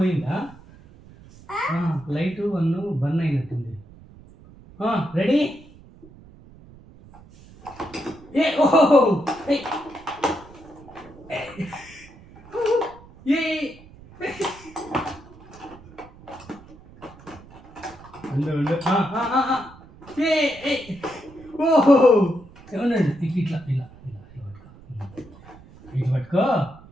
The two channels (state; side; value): noise; right; rumble, 21 dB below the sound